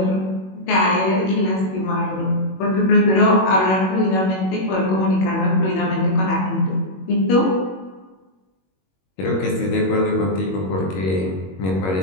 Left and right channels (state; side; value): late; right; 21 ms